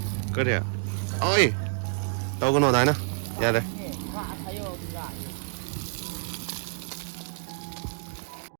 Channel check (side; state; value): left; silent; digital silence